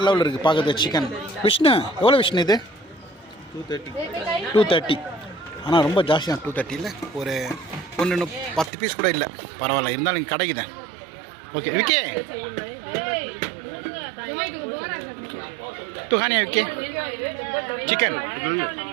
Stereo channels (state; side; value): drops out; left; at 8.7 s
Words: லெவலில் இருக்குது பார்க்குறது சிக்கன். விஷ்ணு எவ்வளோ விஷ்ணு இது? 230. ஆனால் ரொம்ப ஜாஸ்தி தான். 230 ஒரு 10 பீஸ் கூட இல்லை. பரவாயில்ல, இருந்தாலும் இங்கே கிடைக்குதேன். ஓகே விக்கே तू खाने ओके चिकन